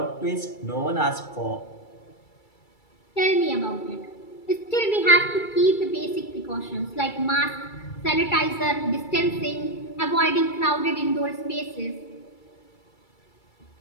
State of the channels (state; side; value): late; right; 2.3 ms